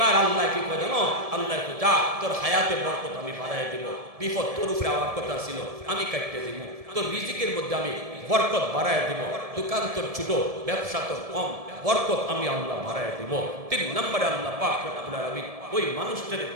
আল্লাহ কি করে জানো, আল্লাহ যা তোর হায়াতে বরকত আমি বাড়াই দেব, বিপদ তোর উপরে আমার কথা ছিল আমি কাটতে দিব, তোর রিজিকের মধ্যে আমি বরকত বাড়াই দেব, দোকান তোর ছোট, ব্যবসা তোর কম, বরকত আমি আল্লাহ বাড়ায় দেব। 3 নম্বরে আল্লাহ পাক রব্বুল আলামিন ওই মানুষটার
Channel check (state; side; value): late; left; 1.7 ms